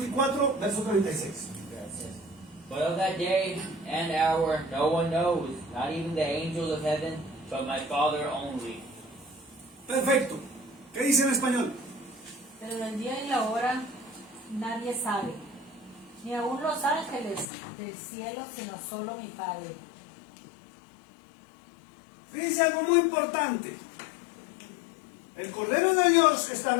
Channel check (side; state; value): right; drops out; at 17.4 s